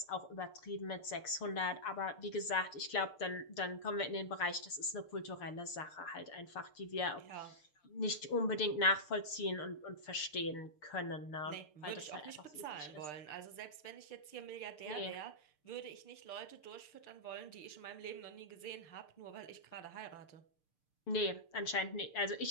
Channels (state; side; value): late; right; 6.7 ms